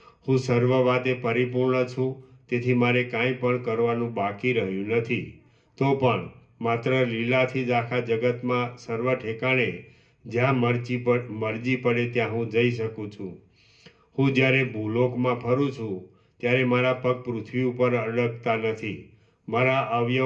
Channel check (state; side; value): identical; both; correlation 1.00